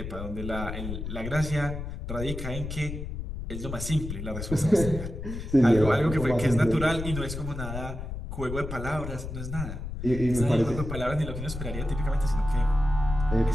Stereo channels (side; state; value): left; noise; rumble, 7 dB below the sound